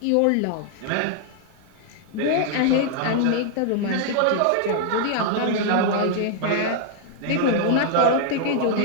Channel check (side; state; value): both; different; correlation 0.00